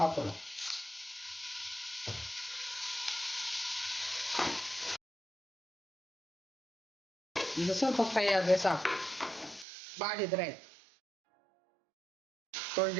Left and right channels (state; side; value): drops out; left; at 9.7 s